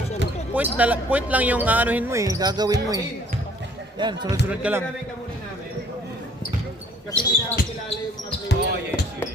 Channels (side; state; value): both; normal; correlation 0.59